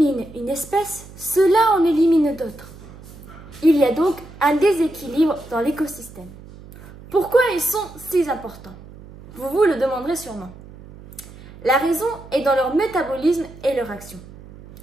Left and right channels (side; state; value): right; noise; hum, 18 dB below the sound